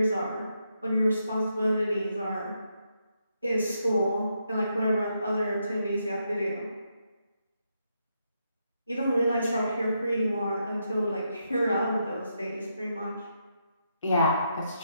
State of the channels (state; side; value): inverted; both; correlation -0.80